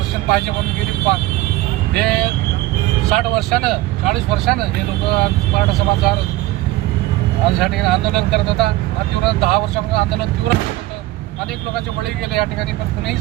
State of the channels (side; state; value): left; quieter; 17.6 dB